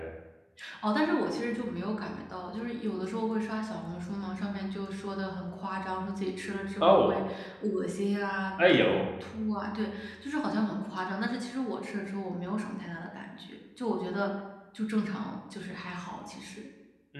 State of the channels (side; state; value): both; identical; correlation 1.00